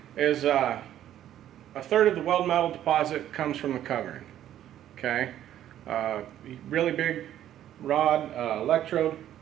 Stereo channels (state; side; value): quieter; left; 11.7 dB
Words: is a third of the weld metal deposit comes from the covering. Okay, really big rod electrode